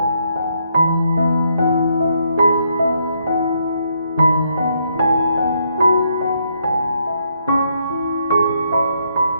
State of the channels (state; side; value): inverted; both; correlation -0.74